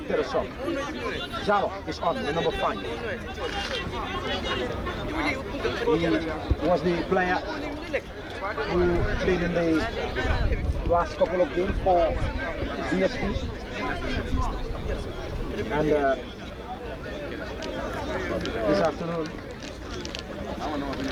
a shot. Jalo is on, the number 5. He was the player who played in the last couple of games for BST. And this afternoon,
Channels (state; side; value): identical; both; correlation 1.00